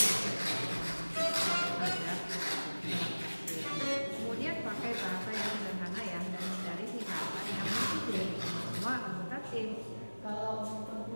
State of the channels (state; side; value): inverted; both; correlation -1.00